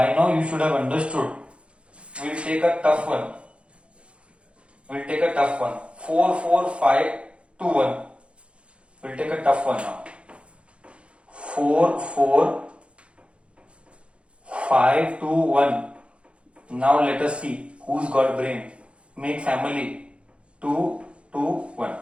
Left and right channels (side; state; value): left; late; 0.059 ms